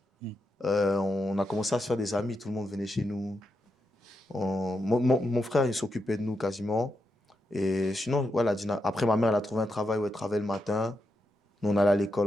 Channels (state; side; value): normal; both; correlation 0.85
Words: On a commencé à se faire des amis. Tout le monde venait chez nous. Mon frère, il s'occupait de nous quasiment. Et sinon, voilà, après, ma mère, elle a trouvé un travail où elle travaillait le matin. Nous, on allait à